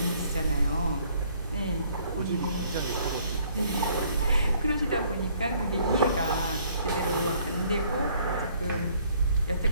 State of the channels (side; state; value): both; inverted; correlation -0.62